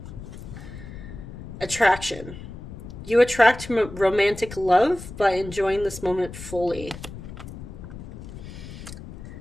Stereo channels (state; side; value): noise; left; rumble, 12 dB below the sound